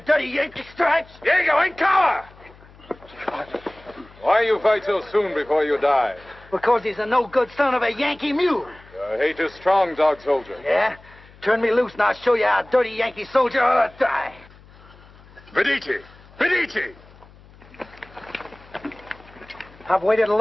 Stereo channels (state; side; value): noise; left; hum, 24 dB below the sound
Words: dirty Yankee stripes. Diego, in cover! Why you fight so soon before you die? Because he's a no-good son of a Yankee mule. Your hate is strong, dog soldier. Yeah? Turn me loose and I'll show you how a dirty Yankee soldier ought to die. Medici! Medici! I've waited a